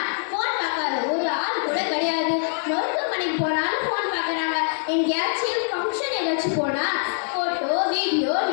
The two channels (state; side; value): silent; right; 63 dB below the other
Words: ஃபோன் பார்க்காத ஒரு ஆள் கூட கிடையாது. மருத்துவமனைக்கு போனாலும் ஃபோன் பார்க்குறாங்க. எங்கேயாச்சும் ஃபங்க்ஷன் ஏதாச்சும் போனால் ஃபோட்டோ வீடியோ